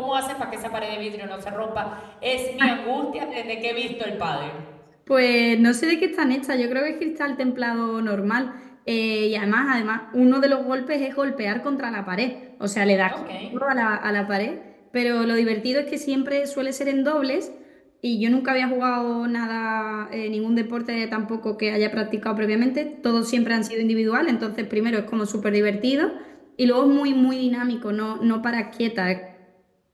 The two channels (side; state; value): both; identical; correlation 1.00